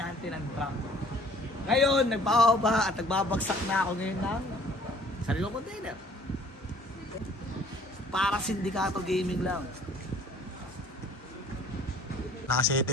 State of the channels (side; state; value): both; normal; correlation 0.55